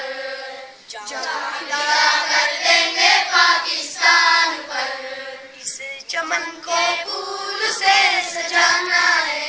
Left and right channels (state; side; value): identical; both; correlation 1.00